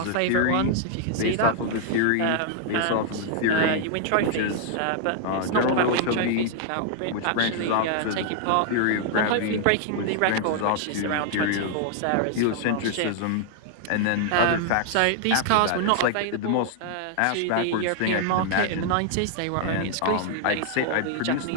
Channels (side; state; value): both; different; correlation 0.00